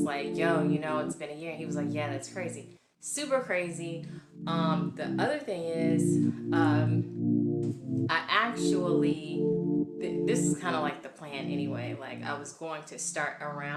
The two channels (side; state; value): both; identical; correlation 1.00